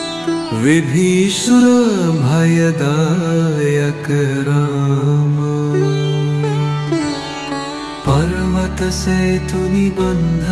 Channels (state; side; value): identical; both; correlation 1.00